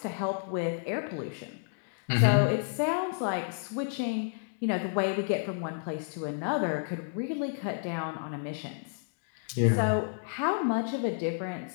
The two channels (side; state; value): right; silent; digital silence